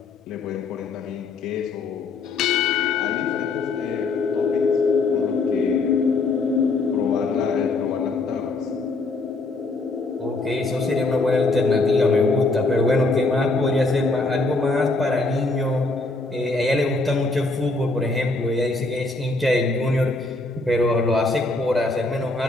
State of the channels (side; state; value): right; quieter; 3.4 dB